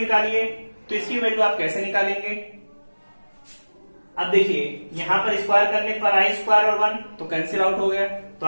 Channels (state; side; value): inverted; both; correlation -1.00